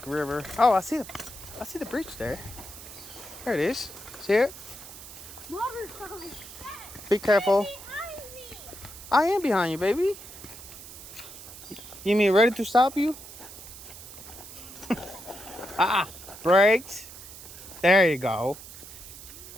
river. Oh, I see the bridge there. There it is. See it? Water's coming. Be careful. Behind me. I am behind you, baby. You mean ready to stop you? Brakes. There you go.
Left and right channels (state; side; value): noise; right; hiss, 15 dB below the sound